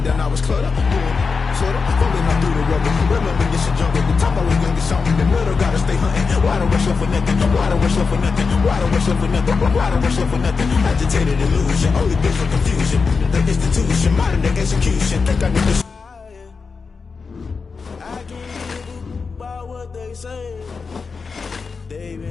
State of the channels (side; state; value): right; quieter; 4.9 dB